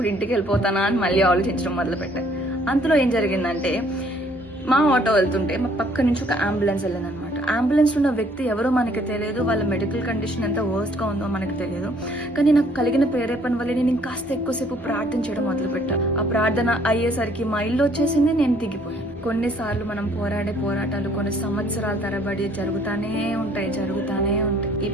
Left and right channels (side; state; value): both; normal; correlation 0.62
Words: ఇంటికి వెళ్ళిపోతానా అని మళ్ళీ ఆలోచించడం మొదలు పెట్టాను. అంతలో ఏం జరిగిందంటే, మా ఆటో వెళ్తుంటే మా పక్క నుంచి ఒక అంబులెన్స్ వెళ్ళిందనమాట. అంబులెన్స్ లో ఉన్న వ్యక్తి ఎవరో మనకి తెలియదు, వాళ్ళ మెడికల్ కండిషన్ ఎంత వర్స్ట్ గా ఉందో మనకు తెలియదు. కానీ నాకు కలిగిన ప్రేరేపణ వల్ల నేను ఇంకాస్త ఎక్కువసేపు ప్రార్థన చేయడం మొదలు పెట్టాను. ఆ ప్రార్థన అయ్యేసరికి మా ఇల్లు వచ్చేసింది, నేను దిగిపోయాను. కొన్నిసార్లు మనం పోరాడే పోరాటాలు కొన్ని సంవత్సరాల తరబడి జరుగుతానే ఉంటాయి. ఈ